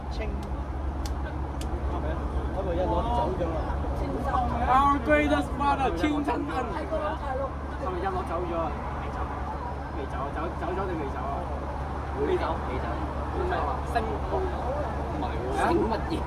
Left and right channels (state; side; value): identical; both; correlation 1.00